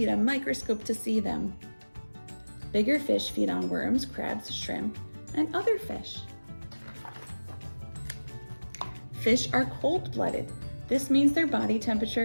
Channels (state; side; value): inverted; both; correlation -1.00